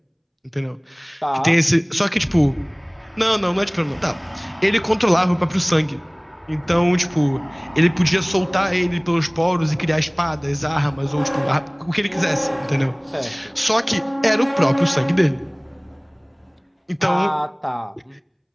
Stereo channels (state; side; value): identical; both; correlation 1.00